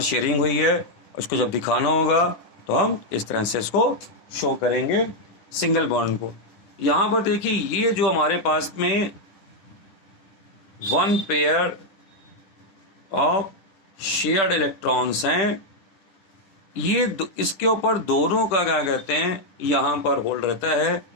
शेयरिंग हुई है, उसको जब दिखाना होगा तो हम इस तरह से इसको शो करेंगे सिंगल बॉन्ड को। यहाँ पर देखिए ये जो हमारे पास में 1 पेयर ऑफ शेयर्ड इलेक्ट्रॉन्स हैं, ये इसके ऊपर दोनों का क्या कहते हैं यहाँ पर होल्ड रहता है।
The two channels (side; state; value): right; late; 10 ms